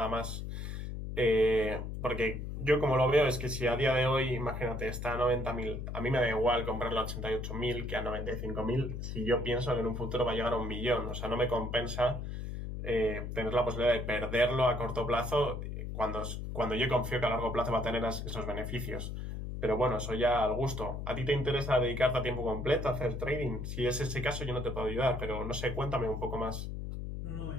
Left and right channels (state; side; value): noise; left; hum, 6 dB below the sound